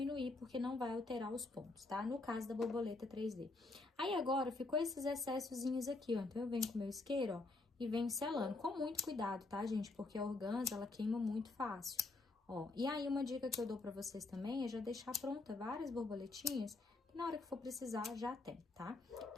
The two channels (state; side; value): quieter; right; 3.3 dB